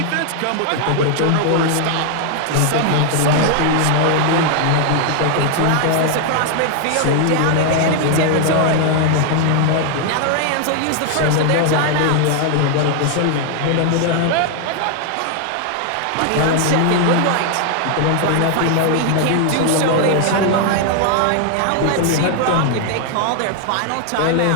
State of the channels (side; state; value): both; different; correlation 0.00